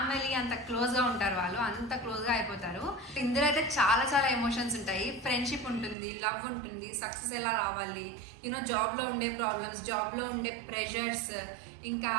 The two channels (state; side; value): drops out; left; at 6.0 s